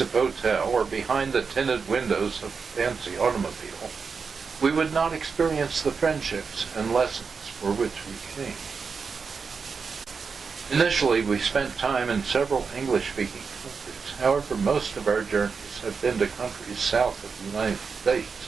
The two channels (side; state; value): left; quieter; 5.3 dB